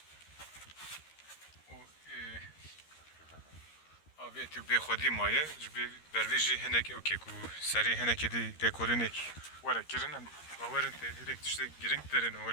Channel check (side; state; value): right; late; 13 ms